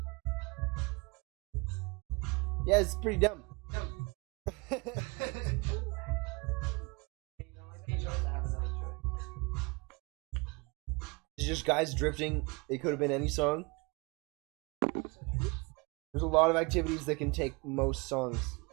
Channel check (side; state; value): left; quieter; 28.1 dB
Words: Yeah, it's pretty dumb. It's just guys drifting. It could have been any song. There's a lot of activities that can take most songs.